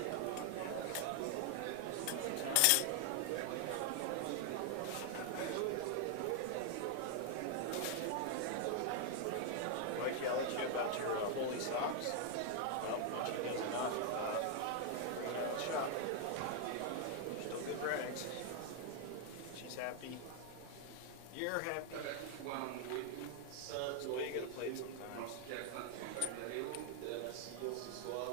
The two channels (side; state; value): both; different; correlation 0.00